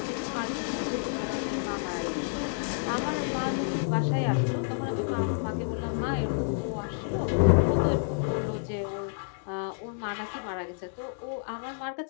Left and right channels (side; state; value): right; silent; digital silence